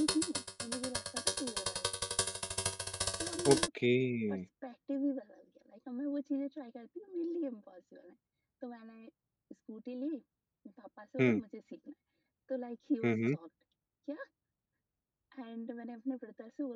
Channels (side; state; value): both; identical; correlation 1.00